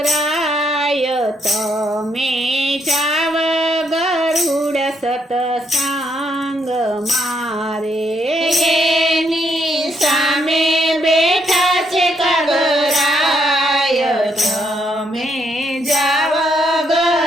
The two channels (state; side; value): normal; both; correlation 0.74